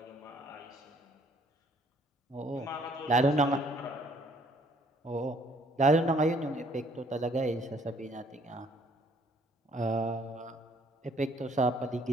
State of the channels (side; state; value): both; normal; correlation 0.62